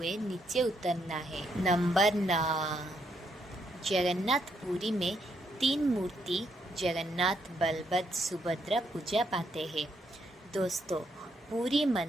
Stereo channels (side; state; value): both; normal; correlation 0.76